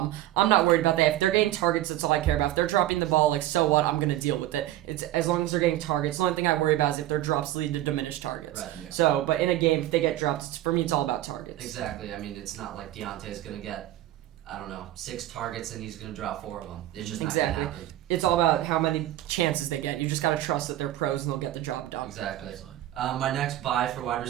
I'm not worried about that. If they're getting targets, that's all I care about. If they're dropping the ball, so what? I'm going to deal with it. It's as long as they're getting targets. The only thing I worry about is if their drops lead to diminished targets. Right. Yeah. So, but in a game, if they get drops, for me, it's all about targets. Exactly. I mean, it's not like Deontay's going to get, 6 targets and he's going to drop 4 of them. It's just not going to happen. It's all about how many chances they get. You just got to trust that they're pros and they'll get the job done. Exactly. My next buy for wide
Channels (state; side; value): quieter; left; 14.4 dB